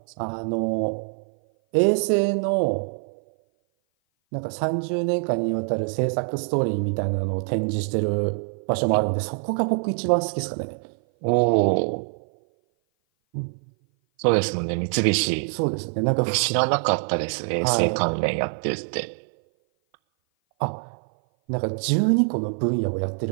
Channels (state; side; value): silent; left; 57 dB below the other